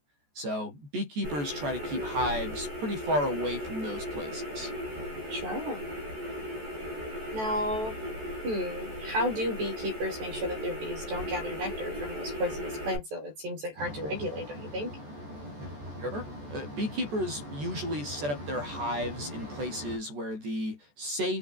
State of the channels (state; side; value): late; left; 14 ms